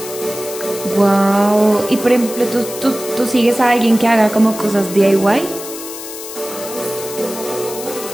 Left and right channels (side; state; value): left; noise; hiss, 11 dB below the sound